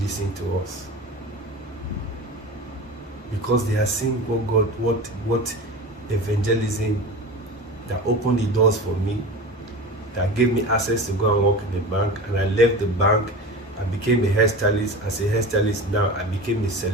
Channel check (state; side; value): normal; both; correlation 0.31